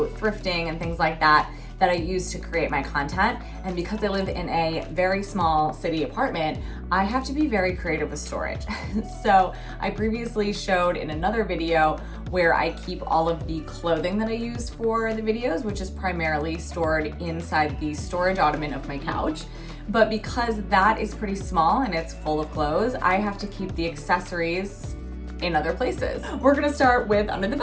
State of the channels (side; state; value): both; identical; correlation 1.00